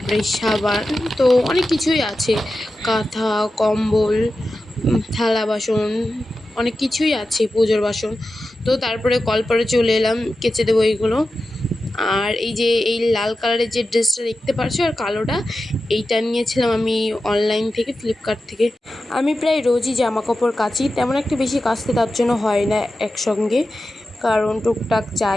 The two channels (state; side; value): normal; both; correlation 0.92